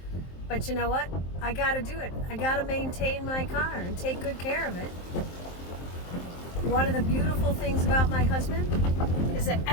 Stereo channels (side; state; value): right; late; 23 ms